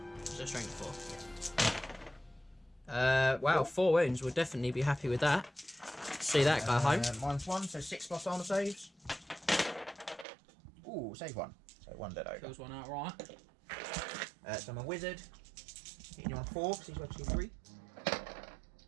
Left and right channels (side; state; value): left; drops out; at 10.2 s